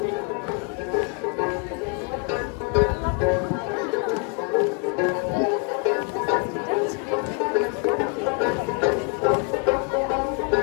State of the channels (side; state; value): right; quieter; 35.7 dB